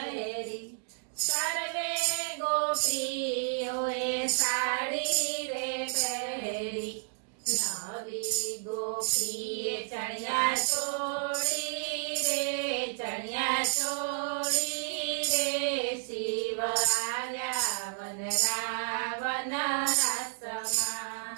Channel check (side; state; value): left; silent; digital silence